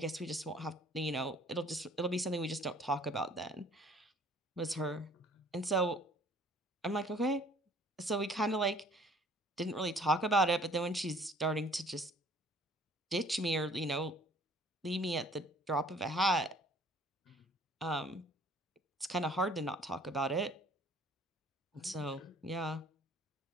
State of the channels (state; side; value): normal; both; correlation 0.55